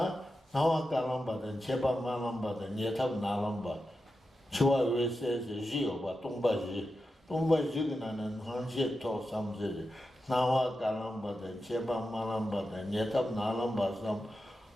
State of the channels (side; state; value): both; normal; correlation 0.90